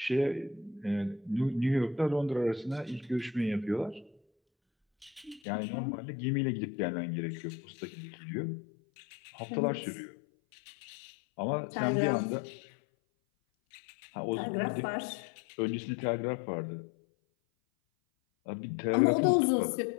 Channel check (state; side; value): drops out; right; at 5.4 s